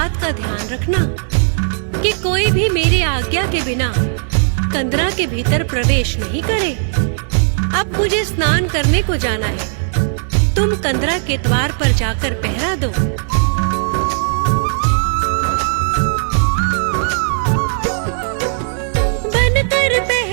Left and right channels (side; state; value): left; silent; digital silence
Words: का ध्यान रखना कि कोई भी मेरी आज्ञा के बिना कंदरा के भीतर प्रवेश नहीं करे। अब मुझे स्नान करने को जाना है, तुम कंदरा के द्वार पर जाकर पहरा दो। बनकर